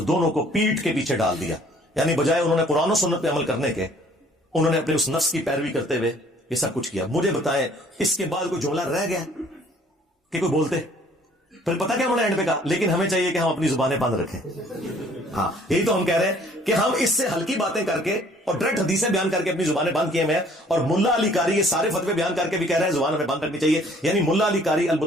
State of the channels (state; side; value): normal; both; correlation 0.58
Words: دونوں کو پیٹھ کے پیچھے ڈال دیا. یعنی بجائے انہوں نے قرآن و سنت پہ عمل کرنے کے، انہوں نے اپنے اس نفس کی پیروی کرتے ہوئے یہ سب کچھ کیا. مجھے بتائیں اس کے بعد کوئی جملہ رہ گیا کہ کوئی بولتے؟ پھر پتہ کیا انہوں نے اینڈ پہ کہا، لیکن ہمیں چاہیے کہ ہم اپنی زبانیں بند رکھیں. ہاں، یہی تو ہم کہہ رہے ہیں کہ ہم اس سے ہلکی باتیں کر کے اور ڈائریکٹ حدیثیں بیان کر کے اپنی زبانیں بند کیے ہوئے ہیں. اور ملا علی قاری یہ سارے فتوے بیان کر کے بھی کہہ رہے ہیں زبان ہمیں بند رکھنی چاہیے. یعنی ملا علی قاری